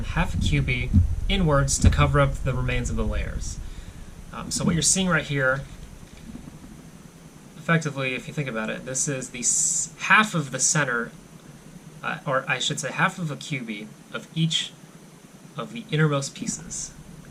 half a cubit inwards to cover up the remains of the layers. So what you're seeing right here, effectively, if you think about it, this is the half of the center, or I should say half of a cubit of each of the innermost pieces,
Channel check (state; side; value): identical; both; correlation 1.00